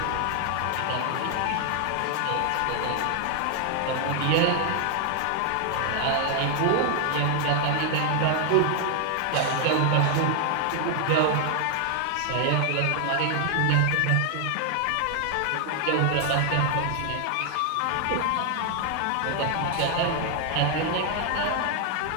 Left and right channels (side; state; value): both; different; correlation 0.00